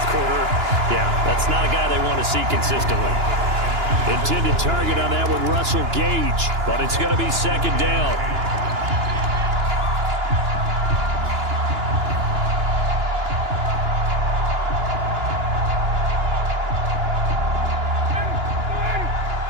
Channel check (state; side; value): late; left; 2.9 ms